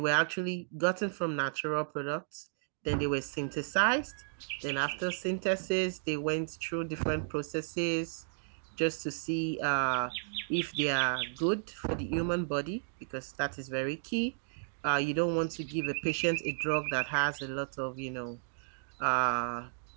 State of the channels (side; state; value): left; silent; digital silence